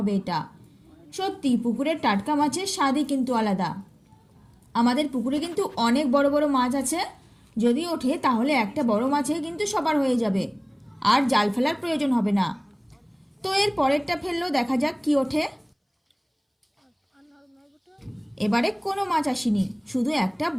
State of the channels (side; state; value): both; identical; correlation 1.00